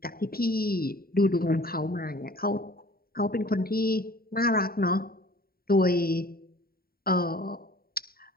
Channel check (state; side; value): late; right; 0.43 ms